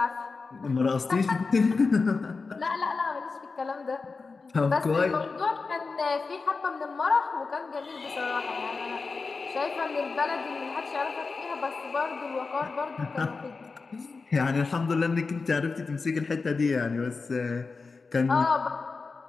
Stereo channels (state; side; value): quieter; right; 4.3 dB